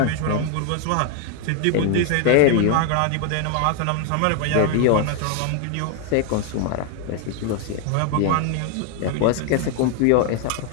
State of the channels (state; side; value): different; both; correlation 0.01